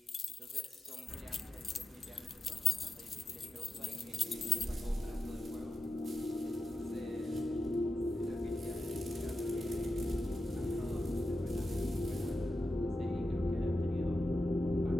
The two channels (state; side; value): normal; both; correlation 0.90